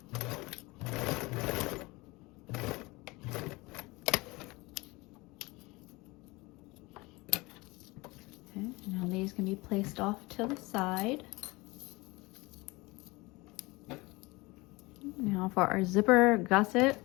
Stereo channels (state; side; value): quieter; right; 23.2 dB